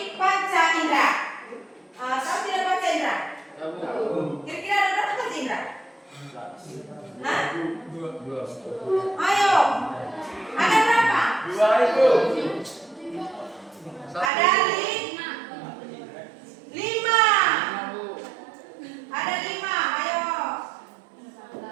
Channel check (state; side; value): drops out; left; at 14.3 s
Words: panca indera. Tahu tidak panca indera? Kira-kira ada berapa panca indera? Hah? Dua. Ayo. Ada berapa? Dua itu. Ada lima. Ada 5. Ayo.